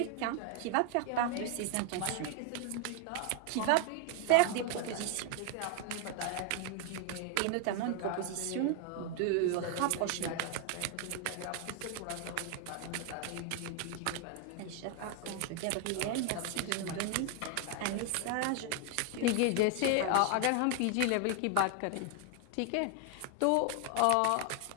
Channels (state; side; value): different; both; correlation 0.00